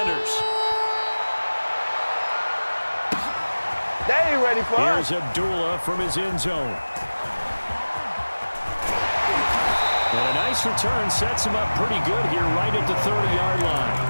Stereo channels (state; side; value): inverted; both; correlation -1.00